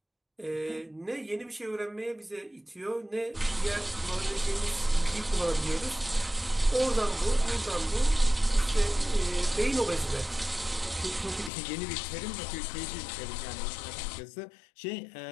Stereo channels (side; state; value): right; drops out; at 11.5 s